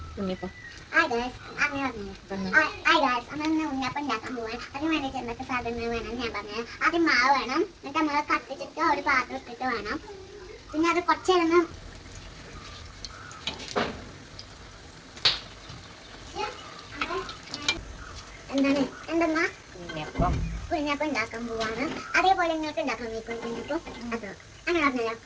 ഉണ്ണിയപ്പം ഉണ്ടാക്കാൻ പോവാൻ അതിന് വേണ്ടിയിട്ട് എന്തൊക്കെ സാധനങ്ങൾ വേണം ഞാൻ പറഞ്ഞത്. ആദ്യം മാവ് വേണം, എന്നിട്ട് നമ്മൾ കത്തിച്ചിട്ട് ഒരു പാത്രം ഇട്ടിട്ട് വേണം. പിന്നെ അത് കുറച്ച് നേരം എന്തെന്നാ കുഞ്ഞപ്പം ഉണ്ടാക്കാൻ പോവാണ്. അതേപോലെ നിങ്ങൾക്ക് ഉണ്ടാക്കാൻ വയ്ക്കും കുഞ്ഞപ്പം. അത് അങ്ങനെ പറഞ്ഞല്ലോ.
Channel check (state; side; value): identical; both; correlation 1.00